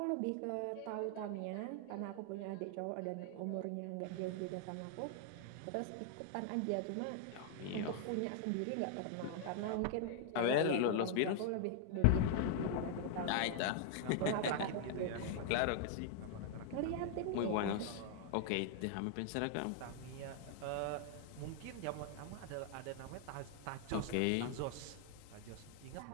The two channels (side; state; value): both; different; correlation -0.01